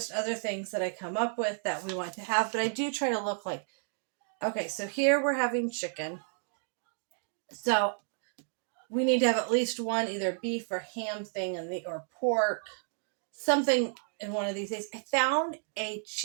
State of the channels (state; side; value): silent; left; 57 dB below the other